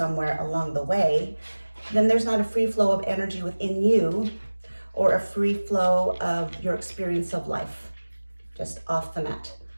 along the way, then there's not a free flow of energy within you, or a free flow of your experience of life, just off the mat.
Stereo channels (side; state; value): both; inverted; correlation -1.00